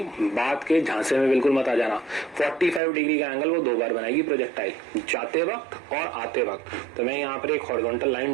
बात के झांसे में बिल्कुल मत आ जाना। 45 डिग्री का एंगल वो दो बार बनाएगी प्रोजेक्टाइल, जाते वक्त और आते वक्त। तो मैं यहाँ पर एक हॉरिजॉन्टल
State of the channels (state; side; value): drops out; left; at 2.8 s